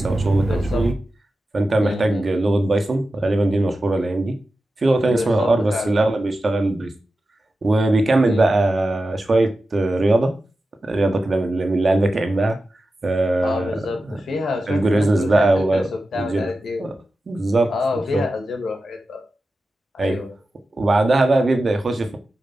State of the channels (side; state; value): both; normal; correlation 0.92